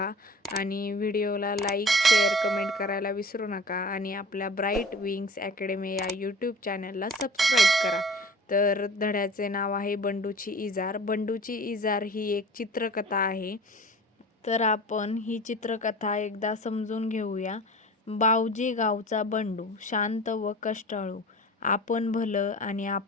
आणि व्हिडिओला लाईक, शेअर, कमेंट करायला विसरू नका आणि आपल्या ब्राईट विंग्स अकॅडमी या यूट्यूब चॅनलला सबस्क्राईब करा. तर धड्याचे नाव आहे बंडूची इजार. बंडूची इजार ही एक चित्रकथा आहे. तर आपण ही चित्रकथा एकदा समजून घेऊया. बावजी गावचा बंडू शांत व कष्टाळू, आपण भलं आणि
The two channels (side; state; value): both; normal; correlation 0.40